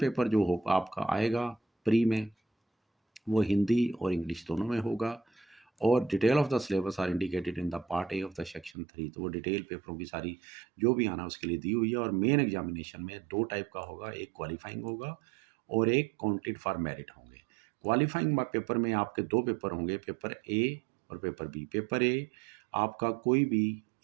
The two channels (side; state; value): left; drops out; at 8.8 s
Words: जो हो आपका आएगा pre में, वो हिंदी और इंग्लिश दोनों में होगा। और detail of the syllabus are indicated in the part A of the section 3। तो वो डिटेल पेपरों की सारी जो भी आना उसके लिए दी हुई है। और मेन एग्जामिनेशन में 2 टाइप का होगा, एक क्वालिफाइंग होगा और एक काउंटेड फॉर मेरिट होंगे। क्वालिफाइंग पेपर में आपके 2 पेपर होंगे, पेपर ए और पेपर बी। पेपर ए आपका कोई भी